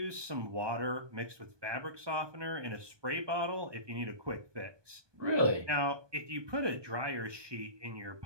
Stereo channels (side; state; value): left; late; 1.2 ms